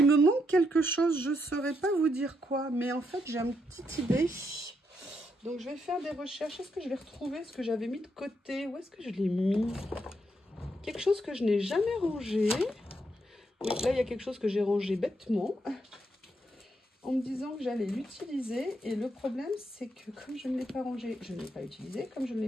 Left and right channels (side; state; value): both; normal; correlation 0.79